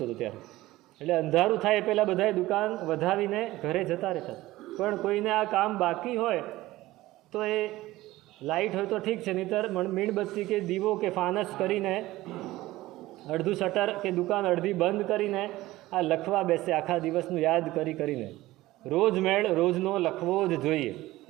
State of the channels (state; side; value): quieter; left; 17.4 dB